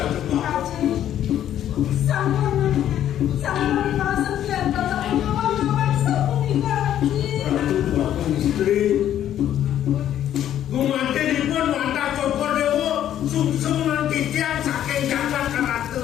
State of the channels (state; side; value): quieter; right; 11.1 dB